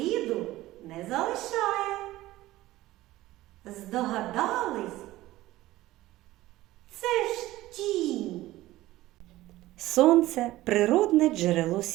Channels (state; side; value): quieter; left; 16.6 dB